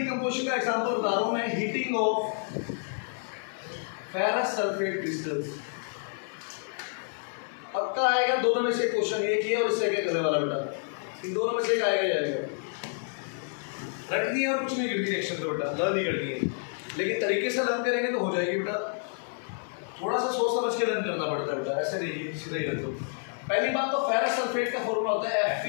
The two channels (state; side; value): silent; right; 59 dB below the other